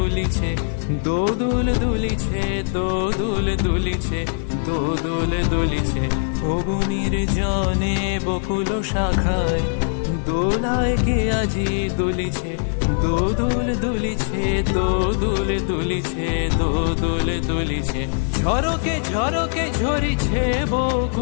দোদুল দুলিছে, দোদুল দুলিছে, দোদুল দুলিছে। ওগো নির্জনে বকুল শাখায় দোলায় কে আজি দুলিছে, দোদুল দুলিছে, দোদুল দুলিছে, দোদুল দুলিছে। ঝরকে ঝরকে ঝরিছে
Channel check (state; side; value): silent; right; digital silence